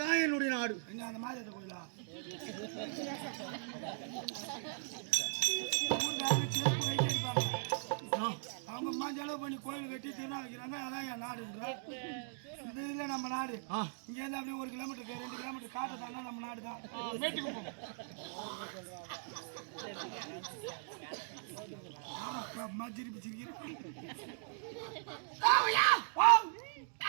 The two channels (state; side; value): silent; left; digital silence